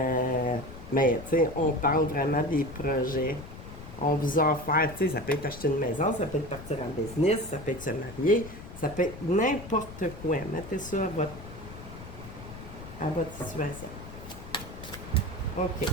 tu sais, on parle vraiment des projets. On vous a offert, tu sais, ça peut être acheter une maison, ça peut être partir en business, ça peut être se marier, ça peut être n'importe quoi. Mettez ça à votre situation. OK.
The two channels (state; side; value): noise; left; rumble, 14 dB below the sound